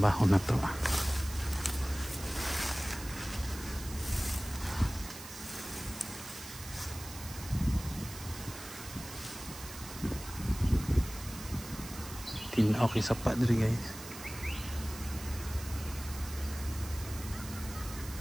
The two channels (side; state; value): right; noise; hiss, 13 dB below the sound